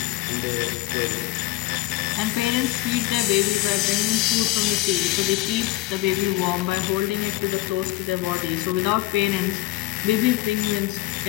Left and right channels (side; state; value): right; quieter; 18.1 dB